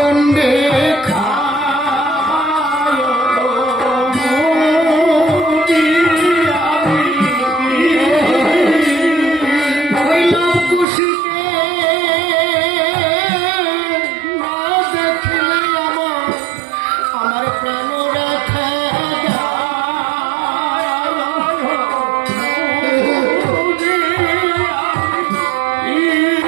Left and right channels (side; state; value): left; drops out; at 10.9 s